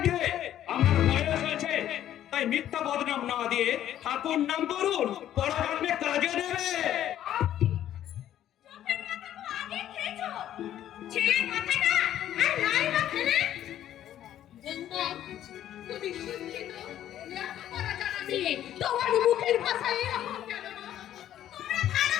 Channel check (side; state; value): right; quieter; 11.7 dB